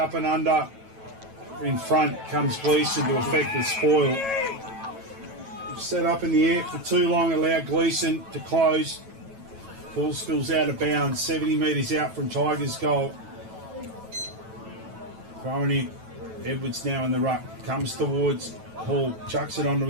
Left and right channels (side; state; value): left; late; 9.1 ms